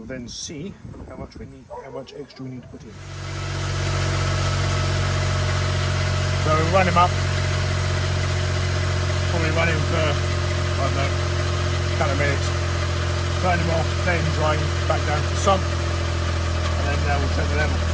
then see how much extra we need to put in. So we'll run him up. Probably run him for, I don't know, a couple of minutes. Turn him off, let him drain back down to the sump, and then we'll check the level.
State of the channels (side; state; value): both; identical; correlation 1.00